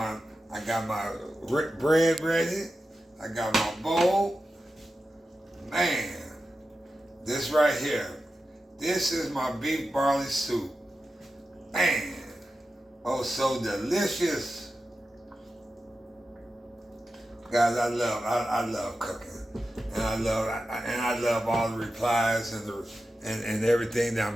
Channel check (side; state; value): both; normal; correlation 0.92